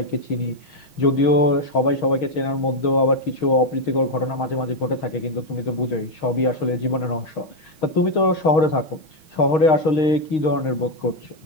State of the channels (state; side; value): late; right; 6.4 ms